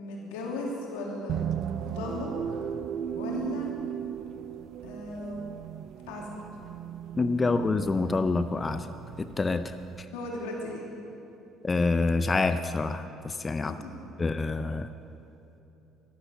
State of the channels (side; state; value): both; normal; correlation 0.80